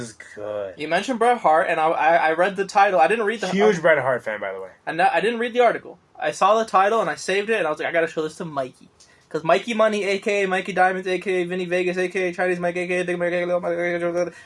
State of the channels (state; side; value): identical; both; correlation 1.00